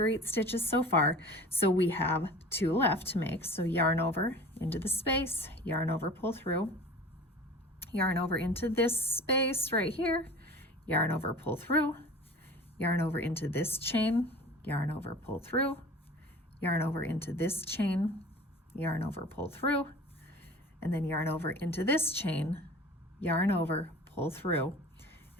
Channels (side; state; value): both; normal; correlation 0.40